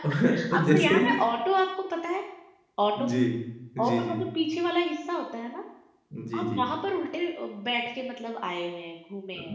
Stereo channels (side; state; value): both; identical; correlation 1.00